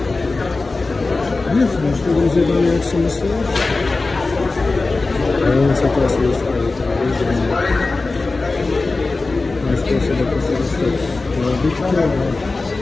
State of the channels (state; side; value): quieter; right; 3.6 dB